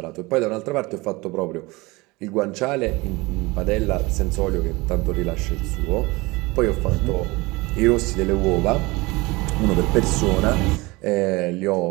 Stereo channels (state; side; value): quieter; left; 23.2 dB